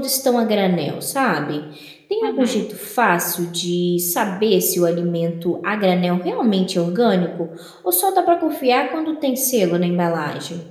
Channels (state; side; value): identical; both; correlation 1.00